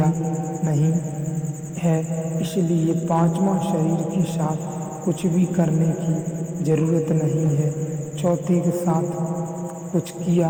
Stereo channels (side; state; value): both; identical; correlation 1.00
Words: नहीं है। इसलिए पांचवा शरीर के साथ कुछ भी करने की जरूरत नहीं है। चौथे के साथ कुछ